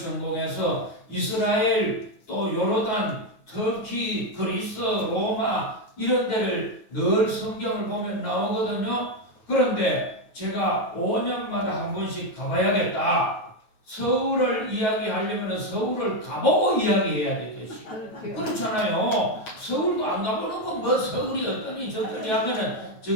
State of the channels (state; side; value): late; right; 9.3 ms